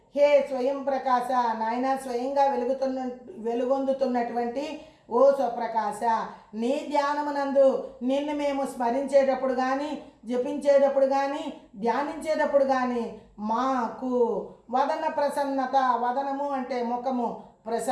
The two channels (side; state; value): both; identical; correlation 1.00